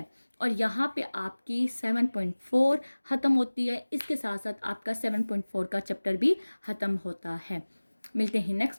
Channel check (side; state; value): both; inverted; correlation -1.00